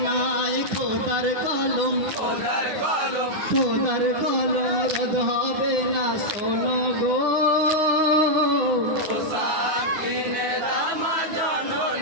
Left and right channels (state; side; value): late; left; 9.6 ms